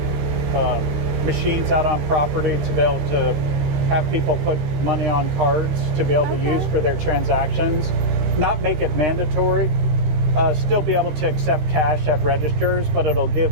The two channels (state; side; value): late; left; 13 ms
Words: machines out on property to be able to have people put money on cards to be able to use for their transactions. Not make it mandatory. Still be able to accept cash at registers, but it'll give